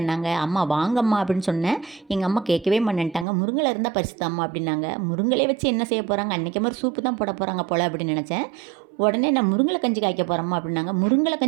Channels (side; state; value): left; drops out; at 3.2 s